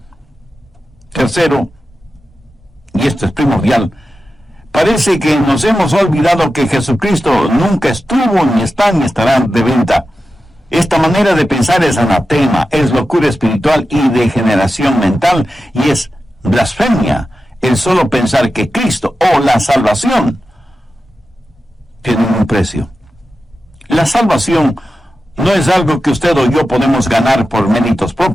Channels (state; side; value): normal; both; correlation 0.92